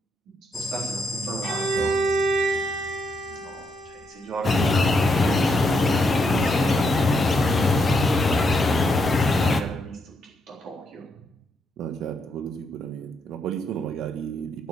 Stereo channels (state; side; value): normal; both; correlation 0.78